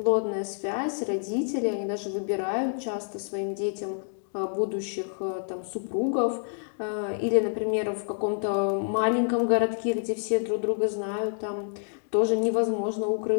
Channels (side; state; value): right; silent; digital silence